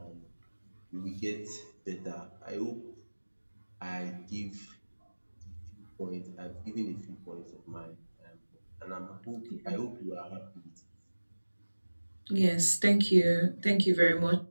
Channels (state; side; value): inverted; both; correlation -1.00